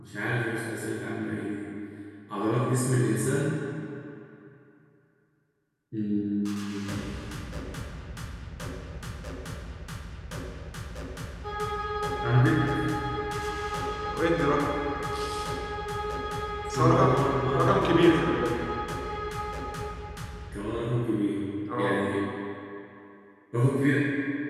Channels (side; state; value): both; identical; correlation 1.00